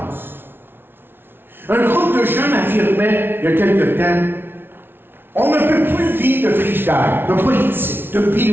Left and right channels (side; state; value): left; late; 0.11 ms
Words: Un groupe de jeunes affirmait, il y a quelque temps, on ne peut plus vivre de frigidaire, de politique, de